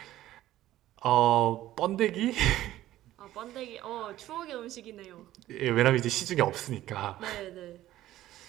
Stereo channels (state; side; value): quieter; left; 14.4 dB